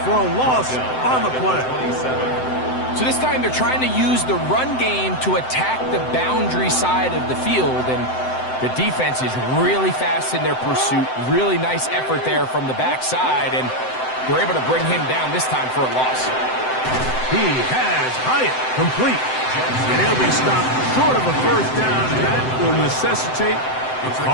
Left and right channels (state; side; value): late; right; 7.8 ms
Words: for a loss on the play. So this time they're trying to use the run game to attack the boundary side of the field, and the defense is really fast in their pursuit. Really nice effort there from the backside, and they're able to bring him down this time for a loss. He has Hyatt complete. And he'll be stopped short of a first down, and that will necessitate a